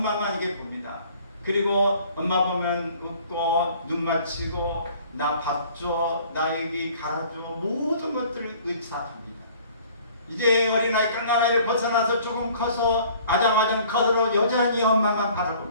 이게 봅니다. 그리고 엄마 보면 웃고 눈 맞추고 나 밥 줘, 나 여기 갈아줘, 모든 것들을 의사합니다. 이제 어린아이 깡나이를 벗어나서 조금 커서 아장아장 커서 여전히 엄마만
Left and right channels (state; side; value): inverted; both; correlation -0.53